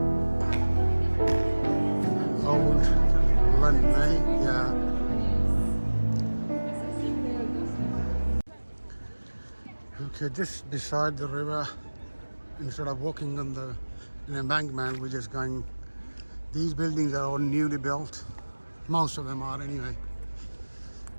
Old London, eh? Yeah. Okay, just beside the river, instead of walking on the embankment, we're just going. These buildings are all newly built. Most of them are anyway.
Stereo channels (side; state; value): both; inverted; correlation -1.00